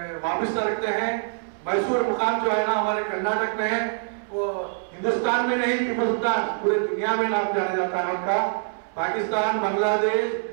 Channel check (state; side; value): silent; left; 62 dB below the other